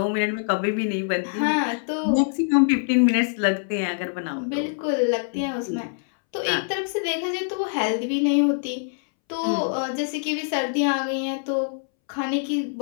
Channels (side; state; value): right; silent; 62 dB below the other